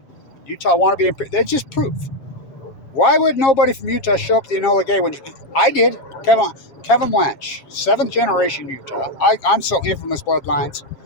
Utah want to be, that's just proof. Why would nobody from Utah show up at the Enola Gate when I did? Kevin Lynch, 7th generation Utah. I'm so infamous bloodlines.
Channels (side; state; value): right; late; 7.4 ms